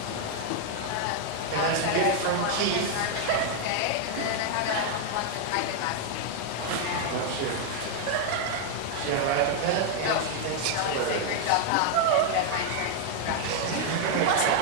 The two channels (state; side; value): different; both; correlation 0.00